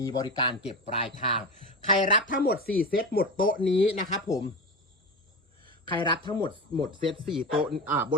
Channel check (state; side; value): normal; both; correlation 0.23